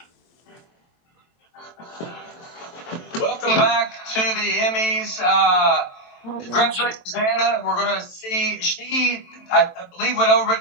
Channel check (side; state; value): right; late; 23 ms